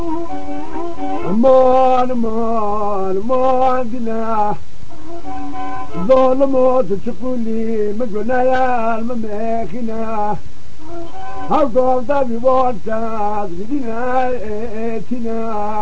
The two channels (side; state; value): both; identical; correlation 1.00